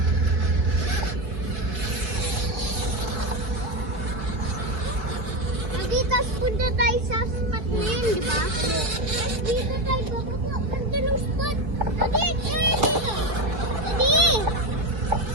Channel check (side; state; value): left; late; 4.6 ms